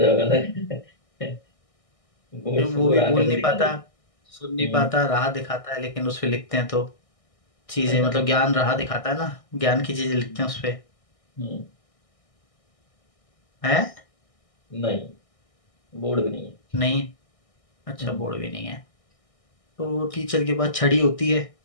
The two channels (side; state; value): right; late; 1.6 ms